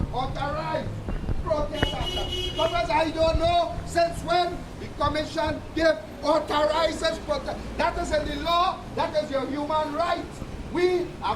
protest action. Because I don't know since when the commission authorizes protest. That is in the law, that is your human right. We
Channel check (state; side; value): identical; both; correlation 1.00